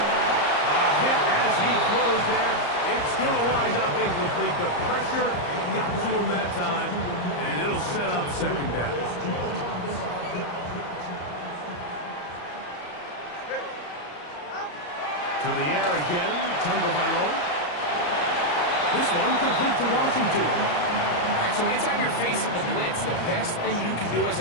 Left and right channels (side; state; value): right; late; 34 ms